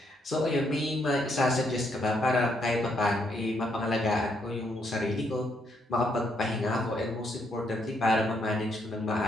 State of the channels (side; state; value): both; normal; correlation 0.74